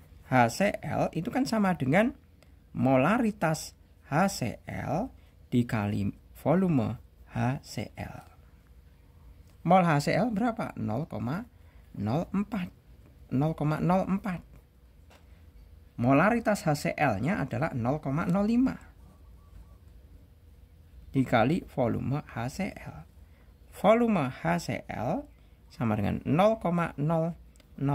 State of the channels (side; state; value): both; identical; correlation 1.00